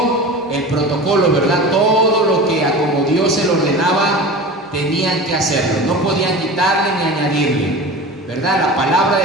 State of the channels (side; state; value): both; normal; correlation 0.33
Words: el protocolo, ¿verdad?, todo lo que a como Dios se lo ordenaba, tenían que hacerlo. No podían quitarle ni añadirle, ¿verdad? La palabra